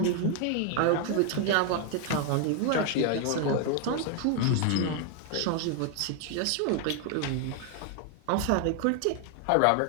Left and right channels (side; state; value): both; different; correlation 0.01